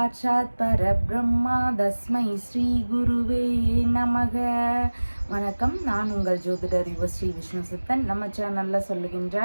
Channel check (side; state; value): both; inverted; correlation -1.00